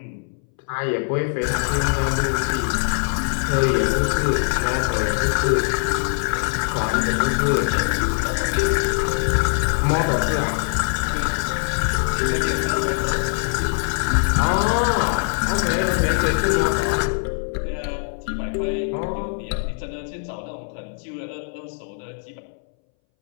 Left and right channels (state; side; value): silent; right; 63 dB below the other